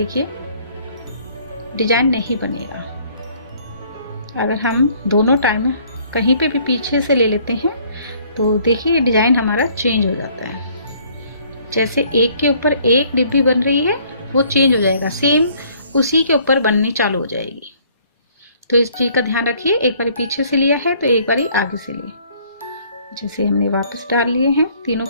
डिजाइन नहीं बनेगा। अगर हम दोनों टाइम कहीं पे भी पीछे से ले लेते हैं तो देखिए डिजाइन हमारा चेंज हो जाता है। जैसे एक के ऊपर एक डिब्बी बन रही है वो चेंज हो जाएगा, सेम उसी के ऊपर बननी चालू हो जाएगी। तो इस चीज का ध्यान रखिए, एक बारी पीछे से लिया है तो एक बारी आगे से लिए। जैसे हमने वापस डाल लिए हैं तीनों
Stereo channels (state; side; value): inverted; both; correlation -0.60